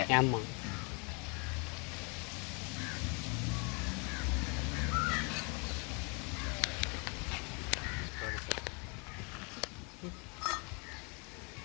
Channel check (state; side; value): quieter; right; 33.4 dB